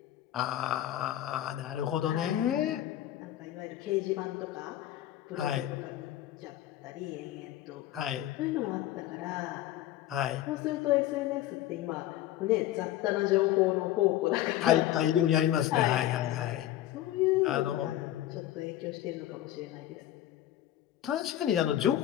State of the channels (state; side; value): quieter; right; 13.2 dB